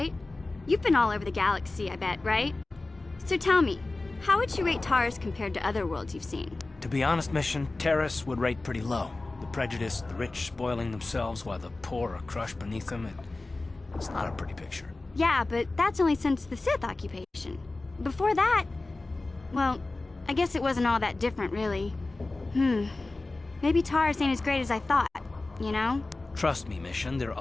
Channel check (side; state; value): right; quieter; 3.2 dB